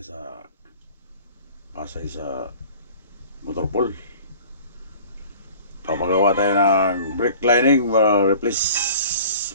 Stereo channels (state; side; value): inverted; both; correlation -0.46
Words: Pasay sa Motorpool. Papagawa tayo ng brake lining, replace